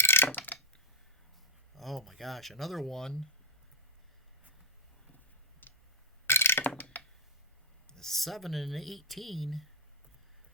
Oh my gosh, another one. 7 and 18.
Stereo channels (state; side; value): normal; both; correlation 0.00